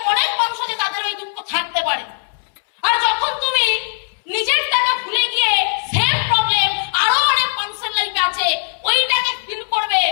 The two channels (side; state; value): right; silent; digital silence